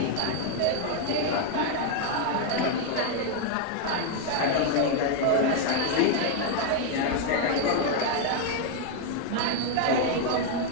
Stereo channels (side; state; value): both; different; correlation 0.00